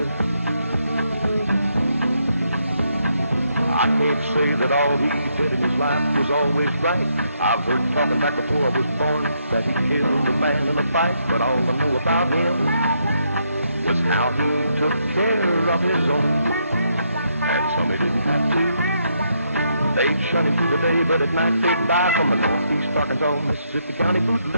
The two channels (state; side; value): inverted; both; correlation -0.76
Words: I can't say that all he did in his life was always right. I've heard talking back before I was born that he killed a man in a fight. But all I know about him was how he took care of his own. And some he didn't have to. They'd shun him through the day, but at night they'd buy from the Northeast Arkansas, Mississippi County